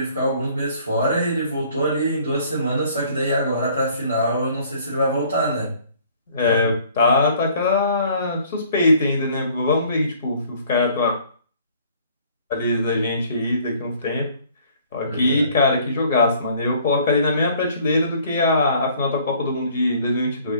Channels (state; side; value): inverted; both; correlation -0.57